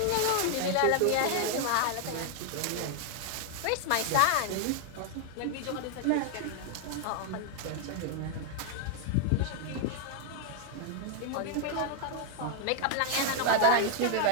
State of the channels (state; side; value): different; both; correlation 0.00